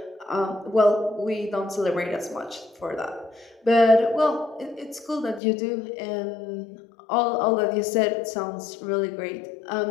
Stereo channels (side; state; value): right; drops out; at 5.4 s